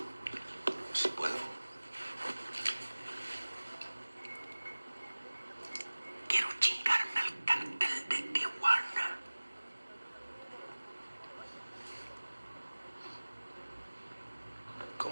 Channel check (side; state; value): both; inverted; correlation -1.00